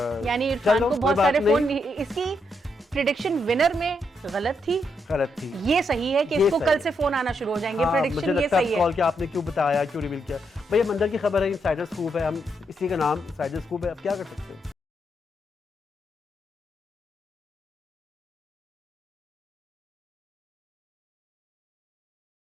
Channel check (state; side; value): normal; both; correlation 0.79